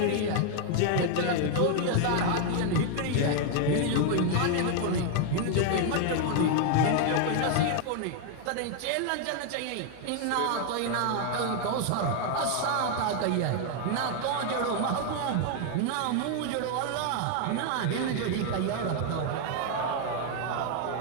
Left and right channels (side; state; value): both; different; correlation 0.00